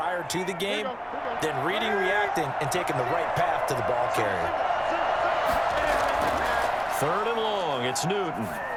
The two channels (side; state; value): both; identical; correlation 1.00